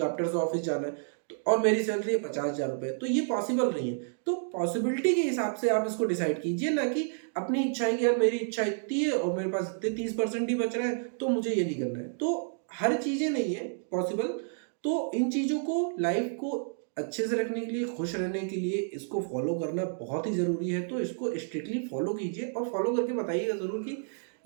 से ऑफिस जाना है, तो और मेरी सैलरी है 50,000 रुपये, तो ये पॉसिबल नहीं है। तो पॉसिबिलिटी के हिसाब से आप इसको डिसाइड कीजिए, ना कि अपनी इच्छा है कि यार मेरी इच्छा इतनी है और मेरे पास इतने 30% ही बच रहा है तो मुझे ये नहीं करना है। तो हर चीज़ें नहीं है पॉसिबल। तो इन चीज़ों को, लाइफ को अच्छे से रखने के लिए, खुश रहने के लिए इसको फॉलो करना बहुत ही ज़रूरी है। तो इसको स्ट्रिक्टली फॉलो कीजिए और फॉलो करके बताइएगा ज़रूर कि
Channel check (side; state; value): left; silent; digital silence